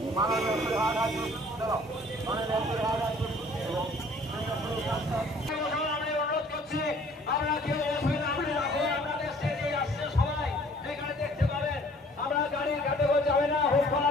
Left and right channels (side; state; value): both; normal; correlation 0.55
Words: মাননীয় ফিরহাদ হাকিম মাননীয় ফিরহাদ হাকিম আমি অনুরোধ করছি আমরা কেউ আপনাদের স্টেজে আসছে সবাই এখানে দেখতে পাবেন। আমরা গাড়ির কাছে যাবে না হোসলা